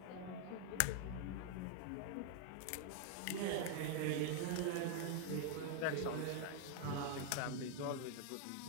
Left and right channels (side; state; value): both; different; correlation 0.00